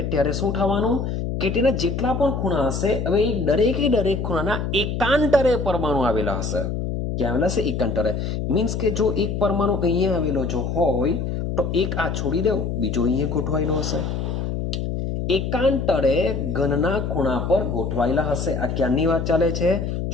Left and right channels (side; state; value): left; noise; hum, 2 dB below the sound